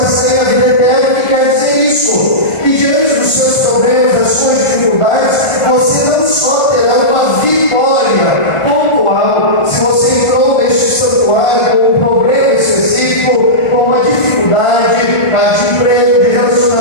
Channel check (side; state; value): right; late; 1.4 ms